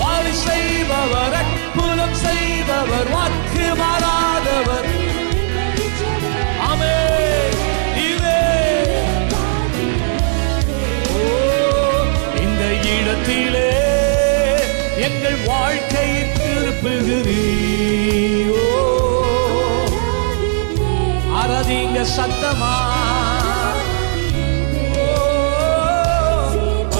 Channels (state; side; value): silent; left; 57 dB below the other